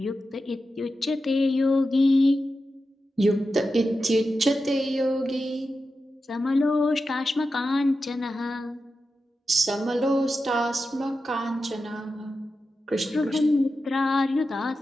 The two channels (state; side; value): normal; both; correlation 0.91